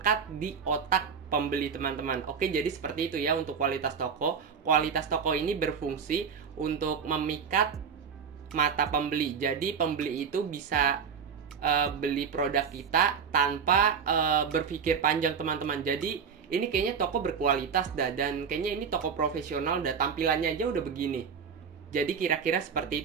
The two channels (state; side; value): quieter; left; 6.5 dB